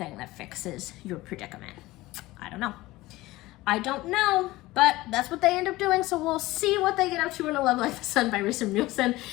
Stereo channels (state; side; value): quieter; right; 18.7 dB